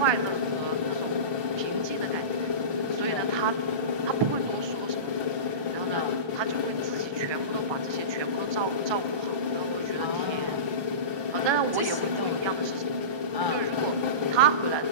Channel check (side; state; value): left; late; 1.2 ms